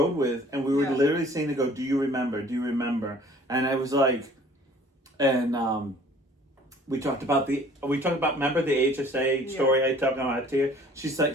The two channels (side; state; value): both; normal; correlation 0.52